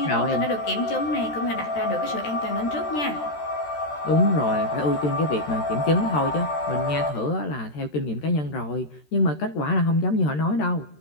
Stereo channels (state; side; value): late; right; 13 ms